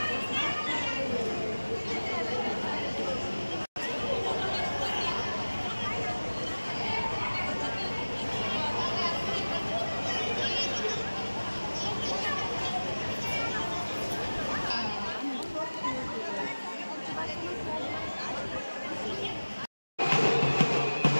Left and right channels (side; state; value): both; inverted; correlation -1.00